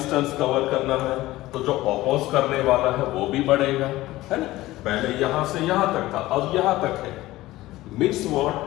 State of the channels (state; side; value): quieter; right; 17.3 dB